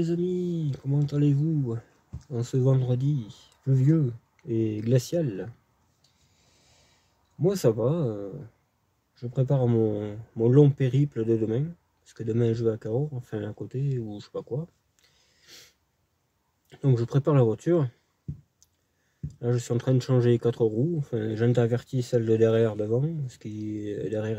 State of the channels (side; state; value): both; identical; correlation 1.00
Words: amis, comment allez-vous en ce vendredi pluvieux et glacial? Moi ça va, je prépare mon long périple de demain, parce que demain je vais à Cahors, enfin à côté ou je sais pas quoi. Donc je prépare la voiture, là je suis en train de changer les 4 roues, enfin j'intervertis celle de derrière devant, parce que